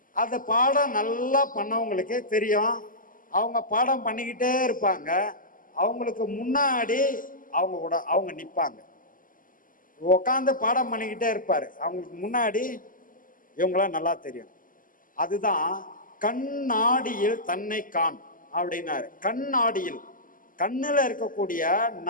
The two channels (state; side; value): late; right; 0.40 ms